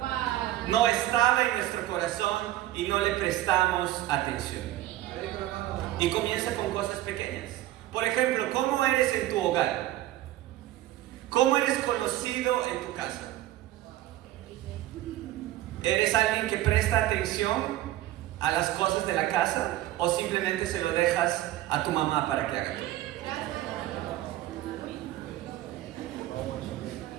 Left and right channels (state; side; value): quieter; left; 14.8 dB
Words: No estaba en nuestro corazón y no le prestamos atención. Y comienza con cosas pequeñas. Por ejemplo, ¿cómo eres en tu hogar? ¿Cómo eres conocido en tu casa? ¿Eres alguien que presta atención a las cosas de la casa o simplemente se lo dejas a tu mamá para que haga todo?